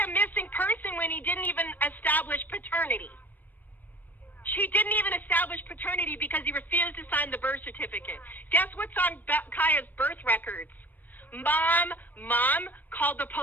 a missing person when he didn't even establish paternity? She didn't even establish paternity because he refused to sign the birth certificate. Guess what's on Kaya's birth records? Mom called the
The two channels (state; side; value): late; right; 0.087 ms